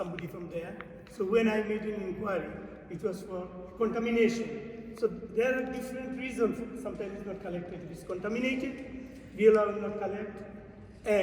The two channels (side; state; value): both; identical; correlation 1.00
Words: from there. So when I made an inquiry, it was for contamination. So there are different reasons. Sometimes it's not collected. If it's contaminated, we allow it not collect.